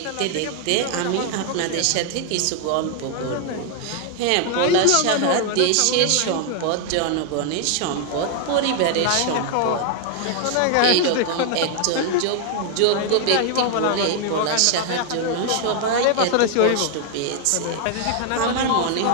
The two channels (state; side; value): different; both; correlation 0.00